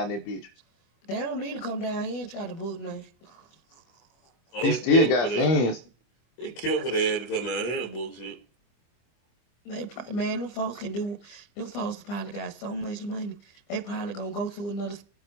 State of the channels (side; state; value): right; late; 25 ms